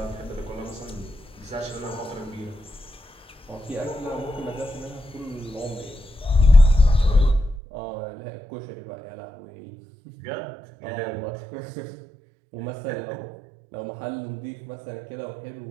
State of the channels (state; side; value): drops out; left; at 7.6 s